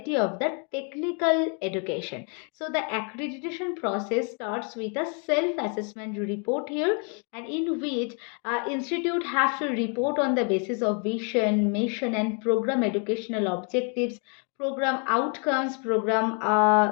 of the technical education. So the accreditation process starts with a self-assessment report here, and in which institute have to report on the basis of vision, mission, and program educational objectives, program outcomes, program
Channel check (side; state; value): right; quieter; 38.9 dB